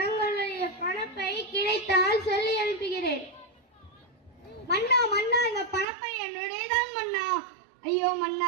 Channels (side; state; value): left; drops out; at 5.9 s